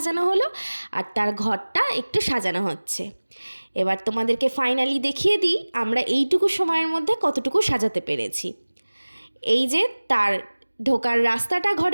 হলো। আর তার ঘরটা একটু সাজানো হচ্ছে। এবার তোমাদেরকে ফাইনালি দেখিয়ে দিই আমরা এইটুকু সময়ের মধ্যে কতটুকু সাজাতে পেরেছি। এই যে তার ঢোকার রাস্তাটা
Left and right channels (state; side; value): inverted; both; correlation -1.00